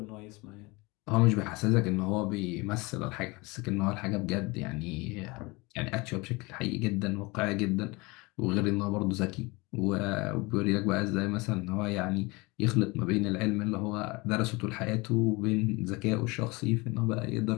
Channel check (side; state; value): right; quieter; 24.9 dB